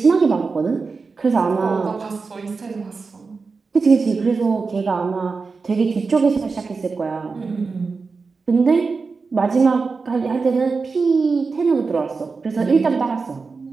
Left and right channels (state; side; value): quieter; left; 4.5 dB